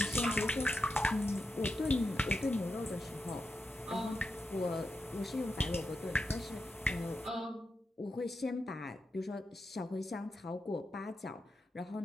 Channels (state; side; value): normal; both; correlation 0.87